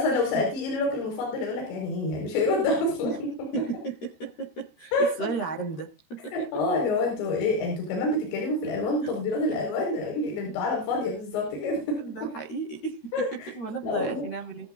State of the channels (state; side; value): late; right; 13 ms